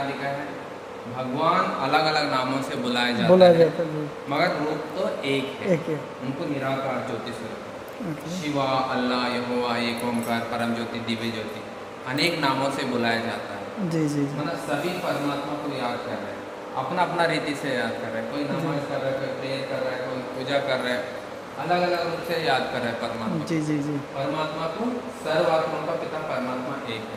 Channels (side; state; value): both; identical; correlation 1.00